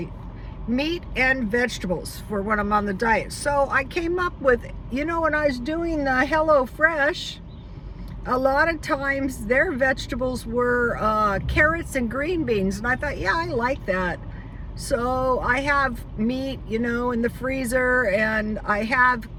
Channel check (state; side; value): identical; both; correlation 1.00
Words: Meat and vegetables for when I'm on the diet. So I came up with, you know, when I was doing the Hello Fresh, a lot of times their vegetables were carrots and green beans. And I thought, yeah, I like that. So I have meat, you know, in the freezer, and I have